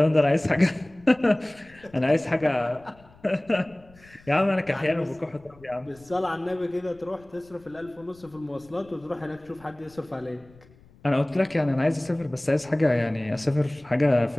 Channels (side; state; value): left; noise; rumble, 26 dB below the sound